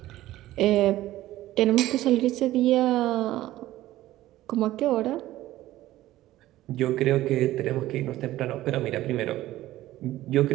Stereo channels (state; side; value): quieter; left; 15.3 dB